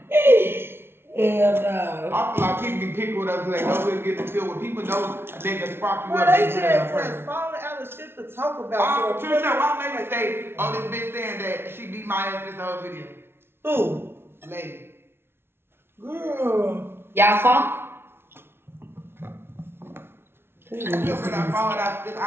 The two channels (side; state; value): left; late; 0.12 ms